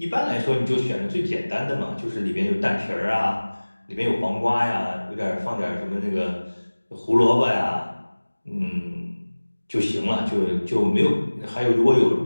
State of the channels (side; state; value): both; inverted; correlation -1.00